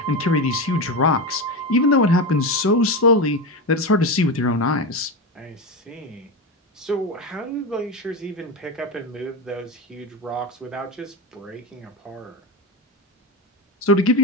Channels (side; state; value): both; normal; correlation 0.18